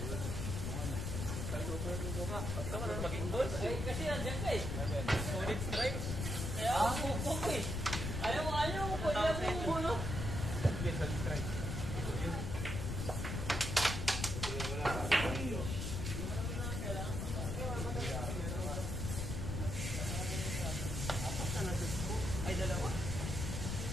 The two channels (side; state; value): left; noise; rumble, 2 dB below the sound